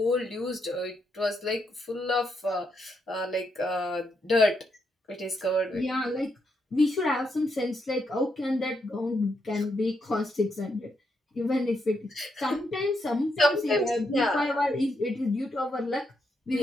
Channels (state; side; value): normal; both; correlation 0.80